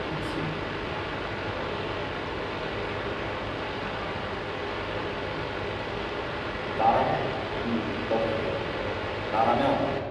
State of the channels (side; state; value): both; identical; correlation 1.00